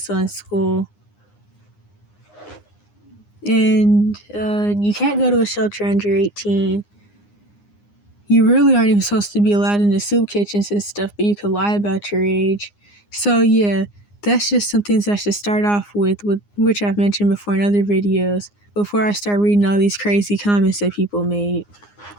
on school. And you can't go to a shelter under 18. You really aren't even supposed to be allowed in the soup kitchens and stuff, but you could lie about your age. So yeah, that's just some things I should start off with which I've mentioned before in other videos, before I start reading all these crazy comments that people made.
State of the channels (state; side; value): late; right; 9.7 ms